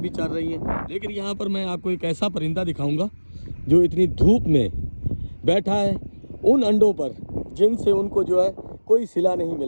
भी चल रही हैं। लेकिन यहाँ पर मैं आपको एक ऐसा परिंदा दिखाऊंगा जो इतनी धूप में बैठा है उन अंडों पर जिनसे उनको जो है कोई सिला नहीं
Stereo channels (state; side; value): inverted; both; correlation -1.00